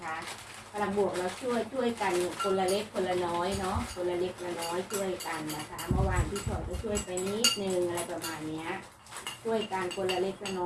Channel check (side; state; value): both; identical; correlation 1.00